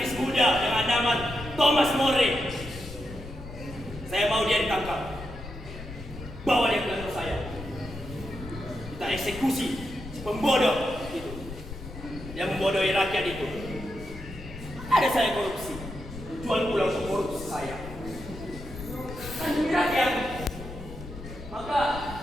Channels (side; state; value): left; noise; rumble, 12 dB below the sound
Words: muda dengan nama Thomas More. Saya mau dia ditangkap. Bawa dia ke kantor saya. Kita eksekusi si pembodoh itu. Yang membodohi rakyat itu. Ada saya korupsi. Jual pulang untuk korupsi saya. Kan demi rakyat. Maka